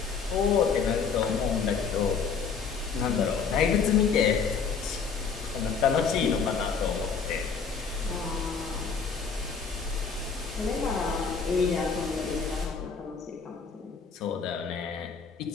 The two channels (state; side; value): quieter; right; 5.7 dB